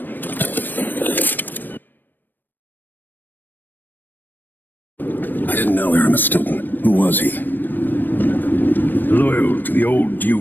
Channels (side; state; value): right; late; 0.092 ms